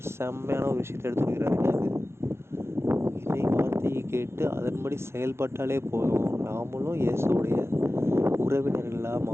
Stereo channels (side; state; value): left; late; 0.12 ms